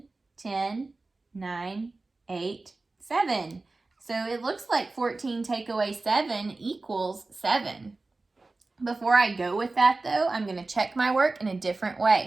10, 9, 8, 7. So it looks like 14 take away 7 equals 7. Before I go with that, though, I'm going to check my work in a different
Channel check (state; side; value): quieter; left; 3.4 dB